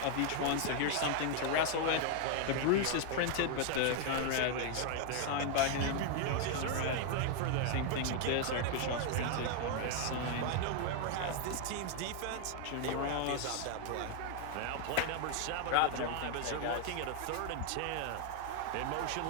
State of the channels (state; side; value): different; both; correlation 0.00